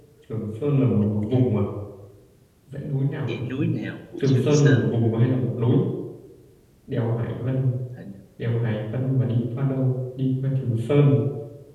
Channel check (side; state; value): both; identical; correlation 1.00